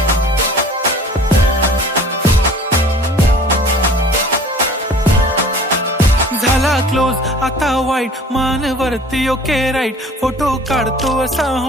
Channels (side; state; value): both; normal; correlation 0.47